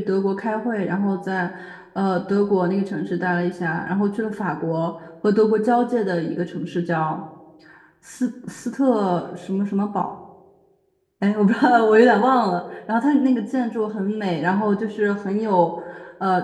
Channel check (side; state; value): both; identical; correlation 1.00